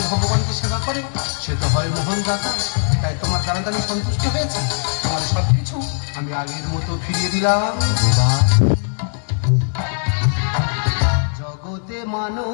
ভগবানকে সেবা করে সে তো হয় মোহন দাতা। তাই তোমার জানাতে আমি সন্তুষ্ট হয়েছি, আমার সবকিছু আমি আগের মতো ফিরিয়ে দিলাম। জগতে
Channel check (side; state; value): right; silent; 66 dB below the other